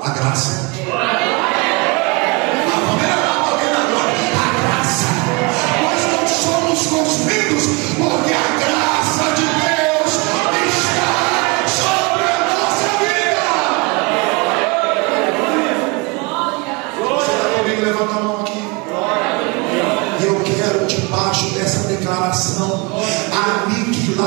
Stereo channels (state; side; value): quieter; left; 27.9 dB